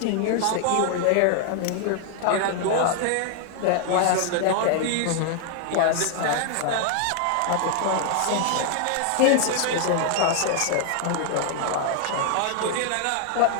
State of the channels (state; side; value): different; both; correlation 0.00